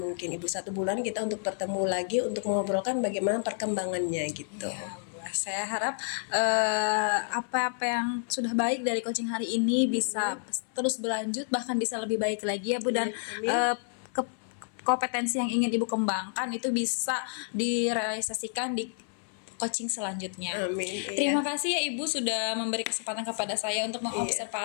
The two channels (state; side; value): silent; right; 57 dB below the other